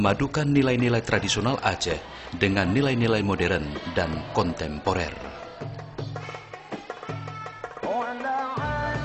nilai-nilai tradisional Aceh dengan nilai-nilai modern dan kontemporer.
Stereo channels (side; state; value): both; identical; correlation 1.00